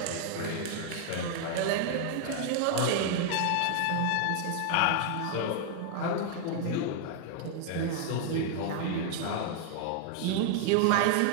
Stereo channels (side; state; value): both; different; correlation 0.00